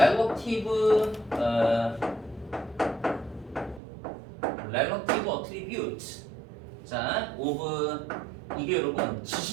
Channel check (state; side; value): drops out; left; at 3.8 s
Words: attribute. 자, of 이게 여러분